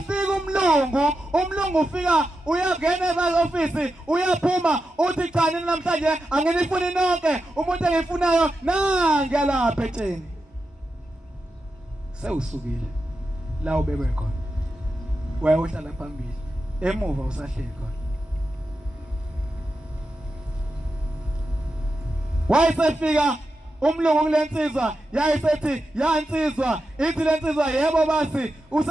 umlungu ufika uyangena e-office uyaphuma uthi cha nini namhlanje anginifuni nonke umuntu engifunayo nangi lapha etsheni sewusukile la ubekwe khona wayohlala phambili emuva usahleli khona wayesefika umlungu kulensizwa yayisethi yansizwa ithi lensizwa yebo basi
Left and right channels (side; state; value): both; normal; correlation 0.89